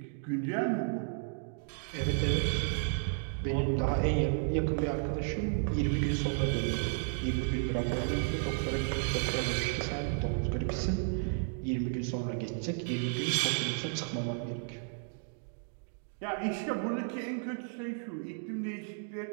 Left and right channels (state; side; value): silent; left; 56 dB below the other